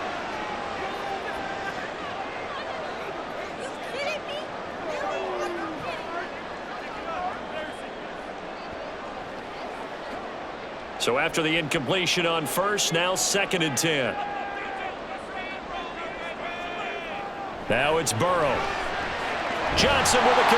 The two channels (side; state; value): both; identical; correlation 1.00